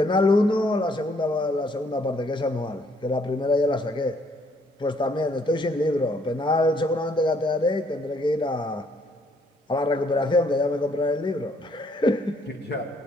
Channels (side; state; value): both; normal; correlation 0.67